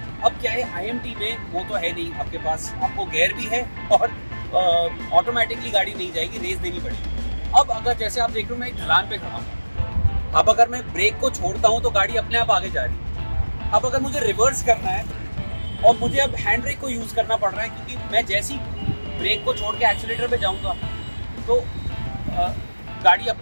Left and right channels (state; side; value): inverted; both; correlation -1.00